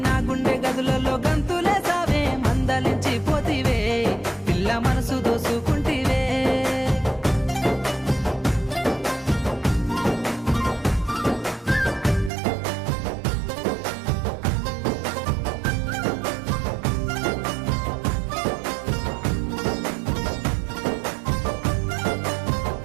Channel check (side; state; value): left; drops out; at 12.3 s